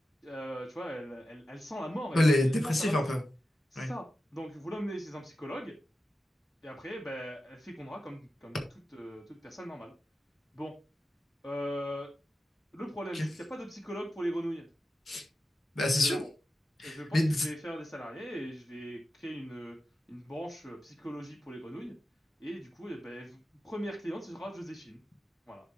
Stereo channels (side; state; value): both; normal; correlation 0.92